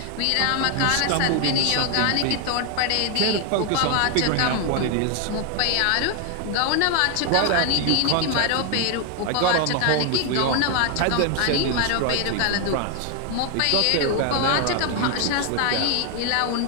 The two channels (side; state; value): both; different; correlation 0.00